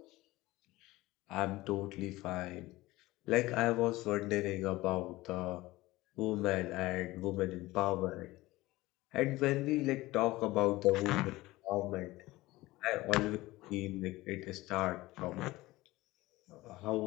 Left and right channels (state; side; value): quieter; right; 18.9 dB